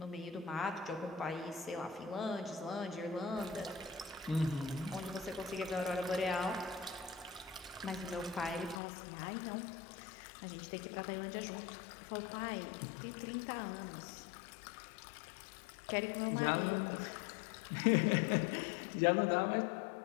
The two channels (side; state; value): right; drops out; at 8.8 s